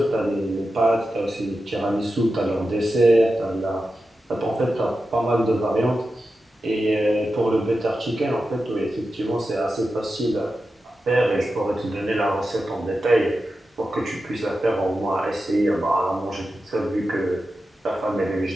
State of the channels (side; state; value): both; normal; correlation 0.91